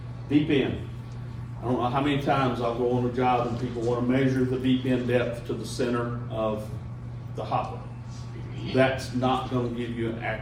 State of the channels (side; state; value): both; identical; correlation 1.00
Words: deep end. I don't know how many times I'll go on a job and people wanna measure the deep end depth to the center of the hopper. That's not gonna give you an